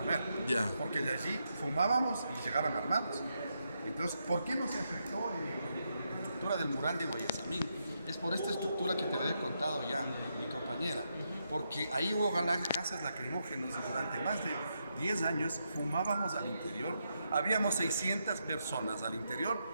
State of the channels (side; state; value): both; inverted; correlation -0.82